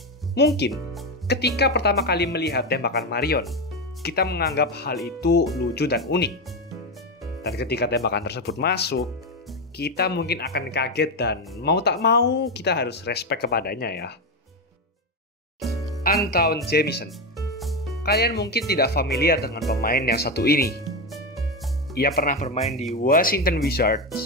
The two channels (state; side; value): normal; both; correlation 0.12